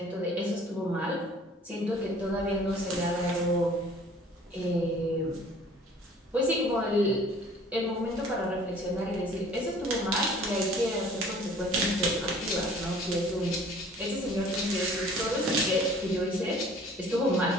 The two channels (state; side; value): normal; both; correlation 0.51